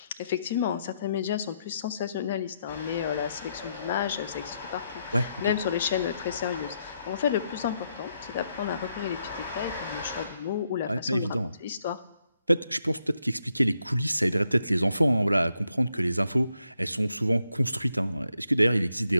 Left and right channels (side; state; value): both; inverted; correlation -0.79